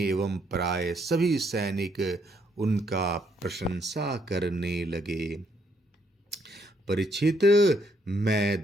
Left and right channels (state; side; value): normal; both; correlation 0.72